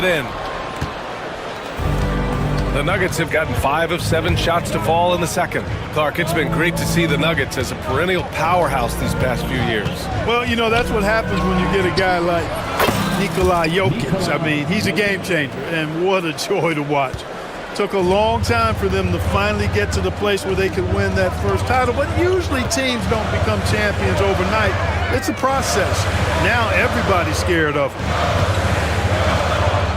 in. The Nuggets have gotten 5 of 7 shots to fall in the second. Clark, it's been great to see the Nuggets as a perennial powerhouse these past few years. Well, you know, that's what happens when you get a guy like Nikola Jokic. I mean, he's a game changer, and what a joy to watch. Took a long time for them to finally get to the place where they could win that first title, but usually teams don't become champions overnight. It's a process. Now everybody's scared of him.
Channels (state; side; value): identical; both; correlation 1.00